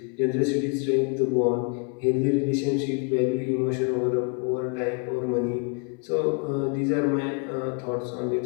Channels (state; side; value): quieter; right; 35.3 dB